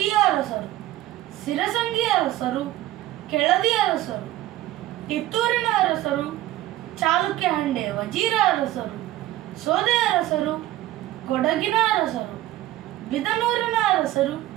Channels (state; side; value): quieter; left; 14.9 dB